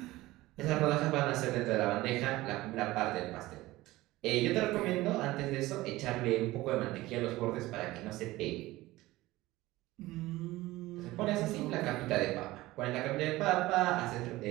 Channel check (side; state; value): left; quieter; 18.3 dB